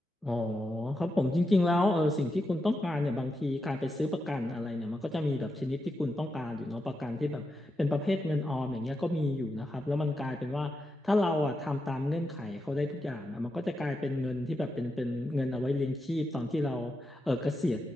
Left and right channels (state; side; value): normal; both; correlation 0.86